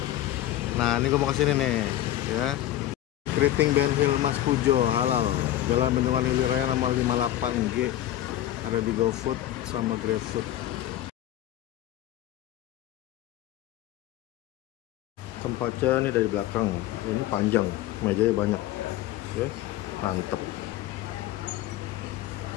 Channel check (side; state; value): right; quieter; 13.4 dB